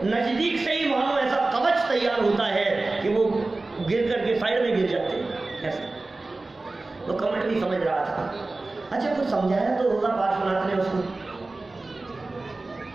नजदीक से ही मानो ऐसा कवच तैयार होता है कि वो गिर करके साइड में गिर जाते हैं। ऐसा तो कमठ भी समझ रहा था। अच्छा, कुछ समझाया तो होगा पार्श्वनाथ ने उसको,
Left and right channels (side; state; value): left; quieter; 3.3 dB